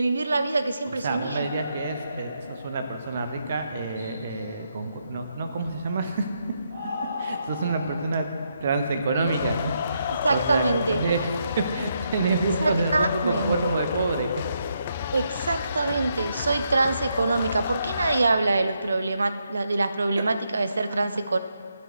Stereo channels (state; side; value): inverted; both; correlation -0.79